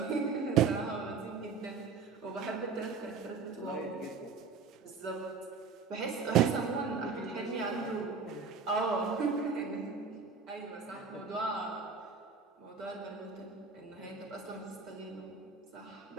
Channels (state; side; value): quieter; left; 5.2 dB